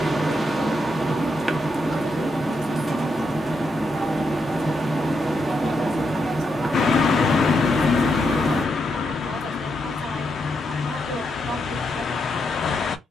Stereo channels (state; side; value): normal; both; correlation 0.82